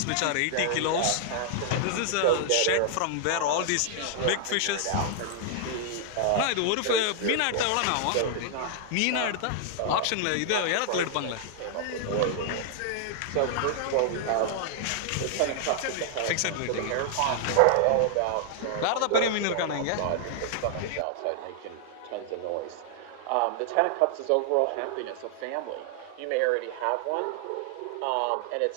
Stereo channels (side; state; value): both; different; correlation -0.01